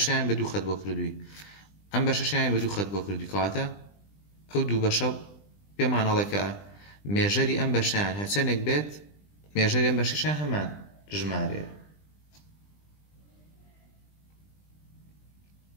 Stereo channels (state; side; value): late; right; 20 ms